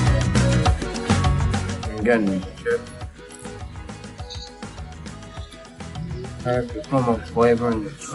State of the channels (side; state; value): both; identical; correlation 1.00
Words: And again, chips. Has so much flavor and it